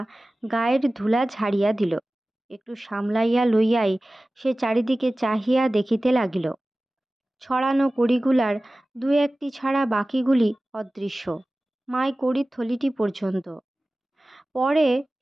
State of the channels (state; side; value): normal; both; correlation 0.97